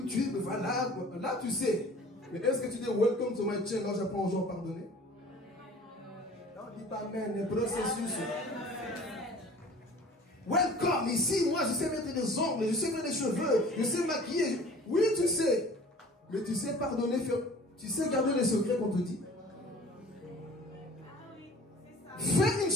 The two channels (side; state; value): both; normal; correlation 0.47